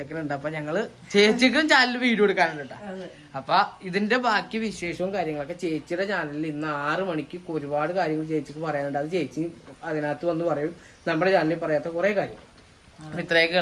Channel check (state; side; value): identical; both; correlation 1.00